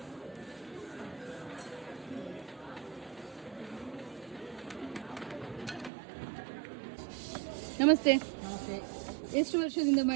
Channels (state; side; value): drops out; left; at 5.9 s